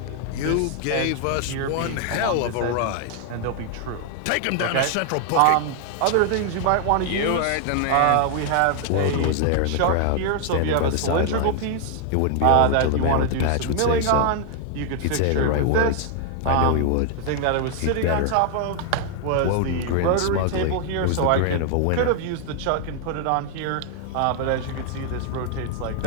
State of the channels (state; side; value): different; both; correlation 0.00